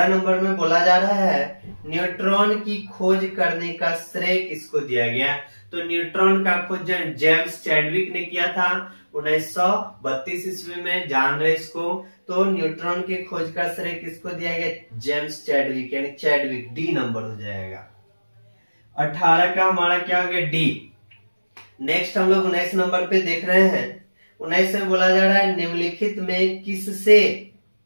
नंबर में बोला जा रहा है न्यूट्रॉन की खोज करने का श्रेय किसको दिया गया। तो न्यूट्रॉन का खोज जेम्स चैडविक ने किया था 1932 ईस्वी में, जान रहे इसको। तो न्यूट्रॉन की खोज का श्रेय किसको दिया गया, जेम्स चैडविक, यानी चैडविक, डी नंबर हो जाएगा। 18 का हमारा क्या हो गया, डी। नेक्स्ट हम लोग 19 नंबर पे देख रहे हैं। 19 में बोला जा रहा है निम्नलिखित में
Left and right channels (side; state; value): both; inverted; correlation -1.00